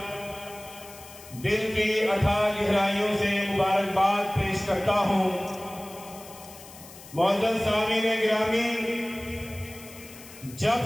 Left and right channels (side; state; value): left; noise; hiss, 18 dB below the sound